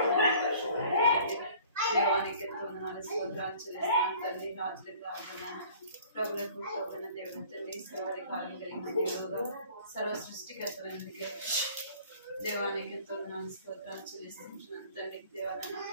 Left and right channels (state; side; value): inverted; both; correlation -0.51